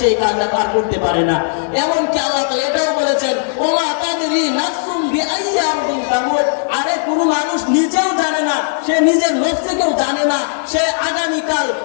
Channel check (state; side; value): silent; right; digital silence